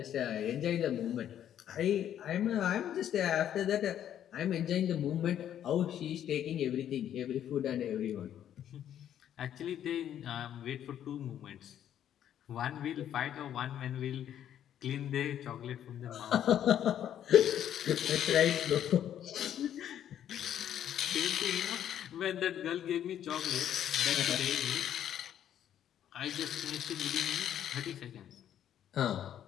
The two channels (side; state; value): right; quieter; 10.4 dB